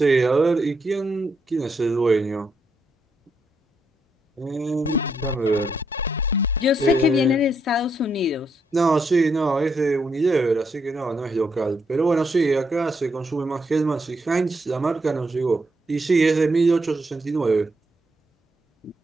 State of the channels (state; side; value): normal; both; correlation 0.78